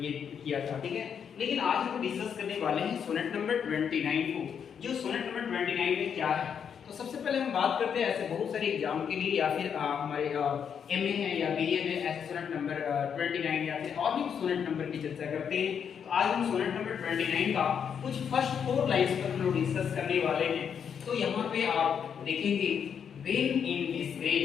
ये किया था, ठीक है। लेकिन आज हम डिस्कस करने वाले हैं सोनेट नंबर 29 को। जो सोनेट नंबर 29 में क्या है, तो सबसे पहले हम बात करते हैं ऐसे बहुत सारे एग्जाम के लिए या फिर हमारे एमए है या बीए में ऐसे सोनेट नंबर 29 या फिर और भी सोनेट नंबर की चर्चा करते हैं। तो आज हम सोनेट नंबर 29 का कुछ फर्स्ट 4 लाइंस पर हम लोग डिस्कस करने वाले हैं। तो यहाँ पे आप देखेंगे when in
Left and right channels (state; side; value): quieter; right; 7.5 dB